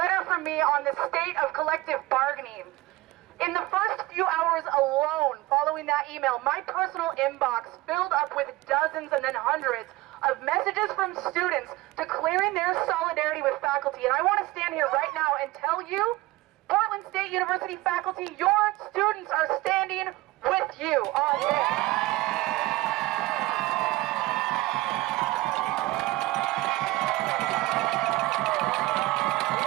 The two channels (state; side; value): quieter; left; 19.3 dB